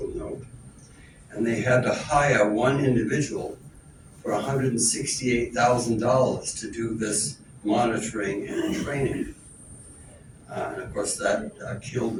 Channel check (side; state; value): both; identical; correlation 1.00